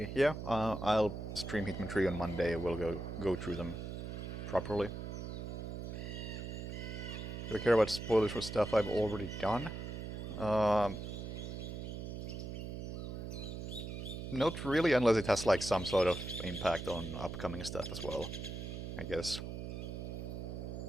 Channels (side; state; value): right; noise; hum, 6 dB below the sound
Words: Yeah, I'll stream Hitman 3 on Monday. We'll go through them properly. Do I care about spoilers for stuff I've already done? Not really, unless it has like some sort of impact on upcoming stuff as well, I guess.